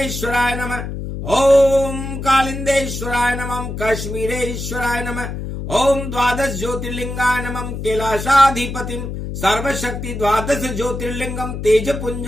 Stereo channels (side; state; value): left; noise; hum, 6 dB below the sound